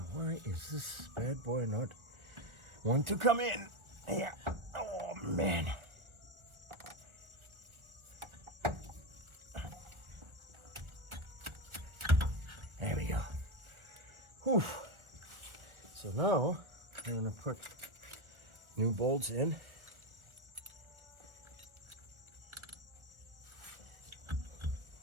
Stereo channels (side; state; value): left; late; 1.4 ms